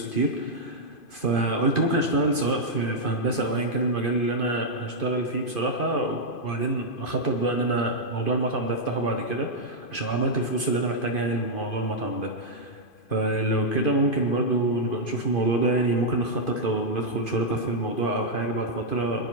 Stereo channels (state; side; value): late; right; 2.5 ms